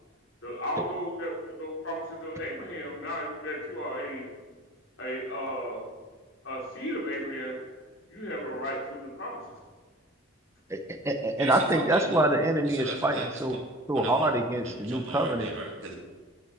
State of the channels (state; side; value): normal; both; correlation 0.42